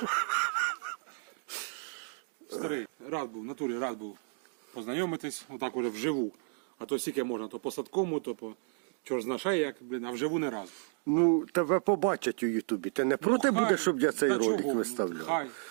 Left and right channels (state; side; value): silent; left; 56 dB below the other